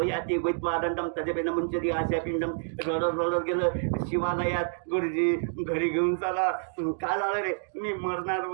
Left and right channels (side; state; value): left; silent; digital silence